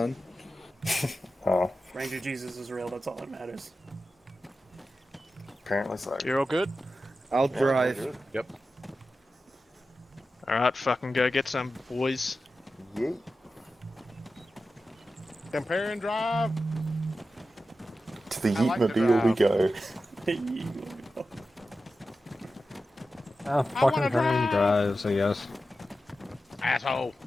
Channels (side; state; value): both; normal; correlation 0.92